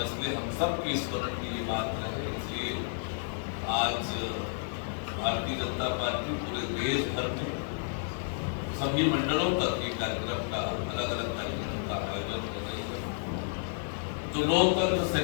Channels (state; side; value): silent; right; digital silence